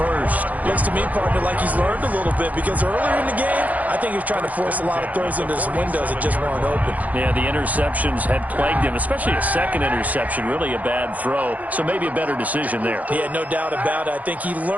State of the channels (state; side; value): late; left; 0.077 ms